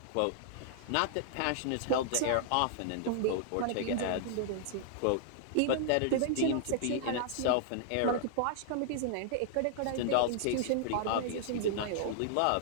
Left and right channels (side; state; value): both; different; correlation -0.01